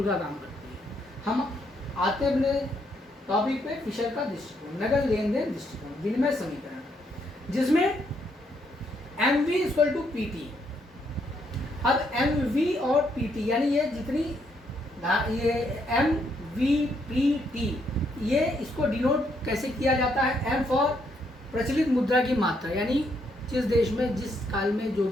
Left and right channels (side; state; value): both; normal; correlation 0.74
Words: का काम करती है। हम आते हैं अपने टॉपिक पे, फिशर का दृष्टिकोण, नगद लेन देन दृष्टिकोण, विनिमय समीकरण, जिसमें M V equal to P T. अब एम वी और पी टी यानी ये जितनी ये एम वी पी टी, ये इसको डिनोट कैसे किया जाता है? एम फॉर प्रचलित मुद्रा की मात्रा, यानी जिस देश में जिस काल में जो